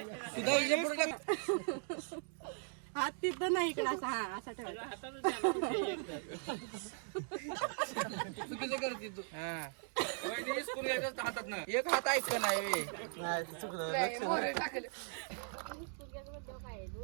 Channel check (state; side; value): silent; left; 52 dB below the other